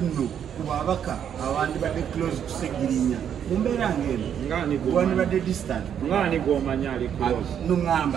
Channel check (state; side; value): quieter; left; 8.8 dB